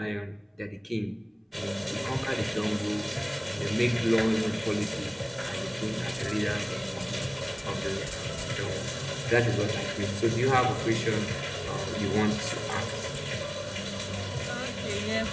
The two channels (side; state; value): both; identical; correlation 1.00